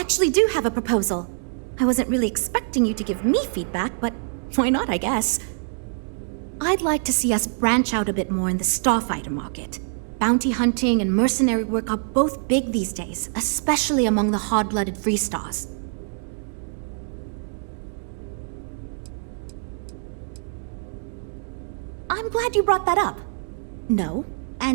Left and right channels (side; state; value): left; silent; digital silence